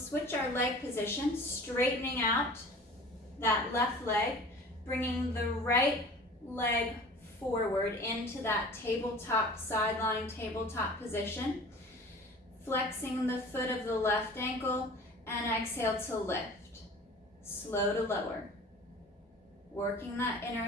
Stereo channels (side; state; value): both; normal; correlation 0.43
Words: our leg position, straightening out that left leg, bringing the right leg forward into that tabletop, sideline tabletop position, flexing the foot of the left ankle, and exhale to lift. Slow to lower. Working that